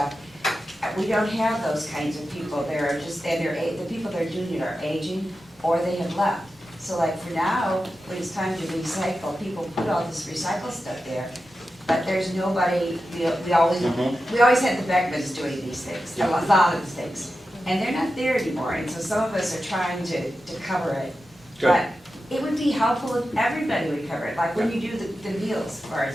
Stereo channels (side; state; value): both; normal; correlation 0.91